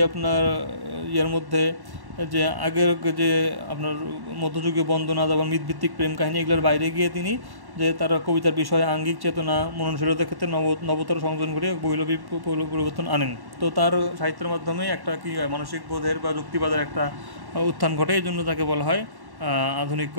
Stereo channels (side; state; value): left; late; 1.1 ms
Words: আপনার মধ্যে যে আগের যে আপনার মধ্যযুগীয় বন্দনা, তারপর মিথভিত্তিক প্রেম কাহিনী, এগুলোর বাইরে গিয়ে তিনি যে তার কবিতার বিষয়ে আঙ্গিক চেতনা, মননশীলতার ক্ষেত্রে নবতর সংযোজন করে বৈপ্লবিক পরিবর্তন আনেন। তো তার সাহিত্যের মাধ্যমে একটা কি মানসিক বোধের বা যুক্তিবাদের একটা উত্থান ঘটে, এই জন্য তাকে বলা হয় আধুনিক